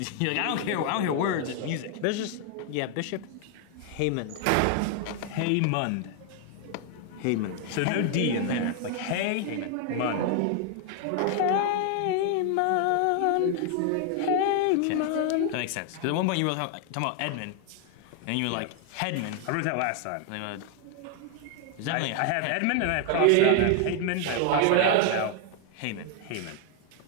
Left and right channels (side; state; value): both; different; correlation 0.00